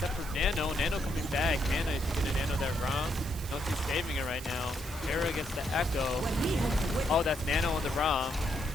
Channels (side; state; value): right; noise; hiss, 15 dB below the sound